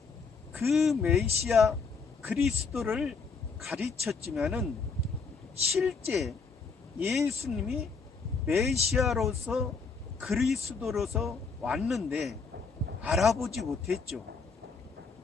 그 메시아 그리스도를 가르쳤지만은 실제 예수님이 메시아로서 그리스도로서 왔는데 알아보지 못했죠.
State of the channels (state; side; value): quieter; right; 4.9 dB